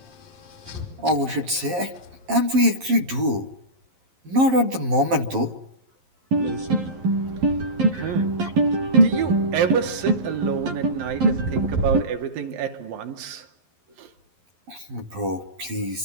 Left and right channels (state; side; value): late; left; 11 ms